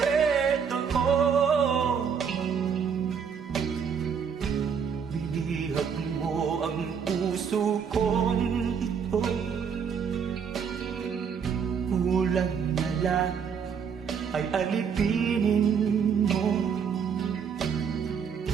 ko. Binihag mo ang puso kong ito, kulang na lang ay alipinin mo.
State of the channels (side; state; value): left; quieter; 6.9 dB